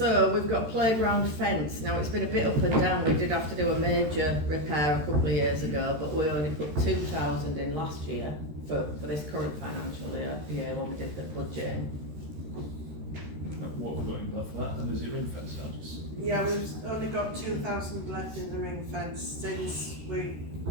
we've got playground fence. Now it's been a bit up and down. We did have to do a major repair a couple of years ago, but we only put 2,000 in last year for this current financial year when we did the budget. What have we got in that for that? And is it ring fence? I'll just. Yeah, we've only got 2,000 left in the ring fence since we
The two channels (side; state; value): left; late; 13 ms